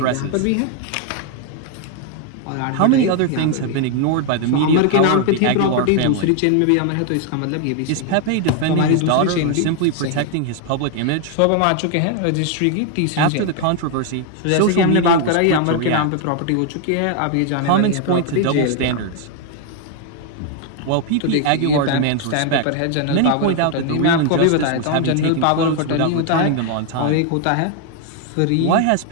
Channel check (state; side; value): different; both; correlation 0.00